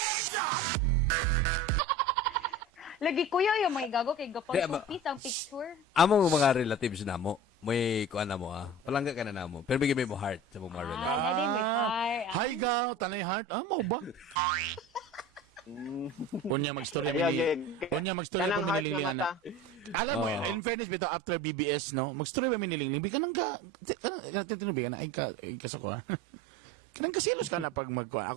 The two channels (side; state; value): both; normal; correlation 0.35